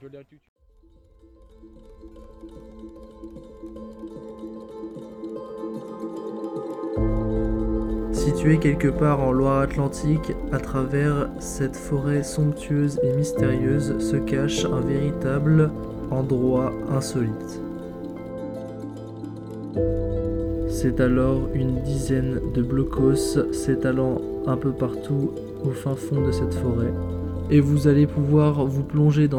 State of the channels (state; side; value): identical; both; correlation 1.00